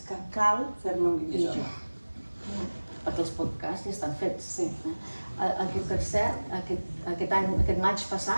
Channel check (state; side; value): inverted; both; correlation -1.00